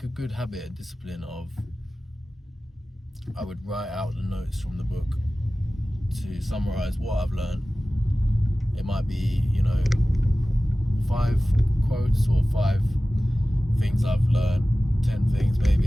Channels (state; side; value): normal; both; correlation 0.96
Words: a good habit, a discipline of, I would write out the notes from the book to summarize what I've learned. It might be, 5 quotes or 5 things I've learned, 10 things